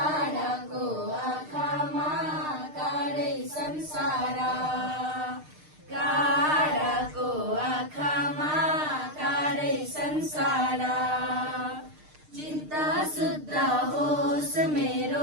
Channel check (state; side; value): late; left; 6.6 ms